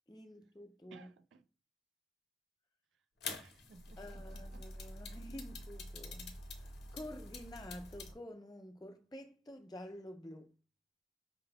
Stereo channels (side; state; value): both; normal; correlation 0.76